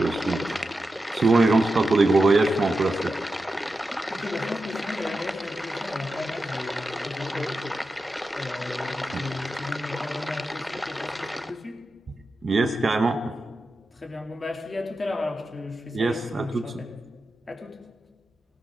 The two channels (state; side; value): normal; both; correlation 0.90